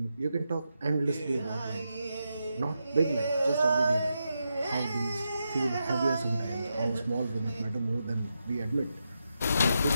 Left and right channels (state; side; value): inverted; both; correlation -0.86